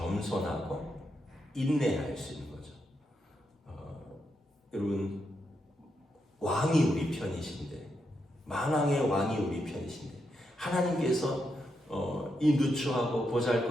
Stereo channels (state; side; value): normal; both; correlation 0.83